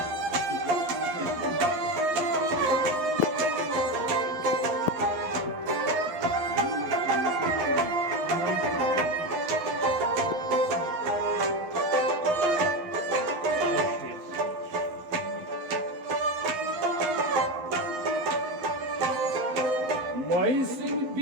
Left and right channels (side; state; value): left; late; 11 ms